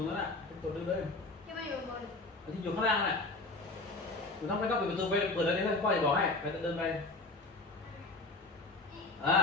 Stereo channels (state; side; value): quieter; right; 3.2 dB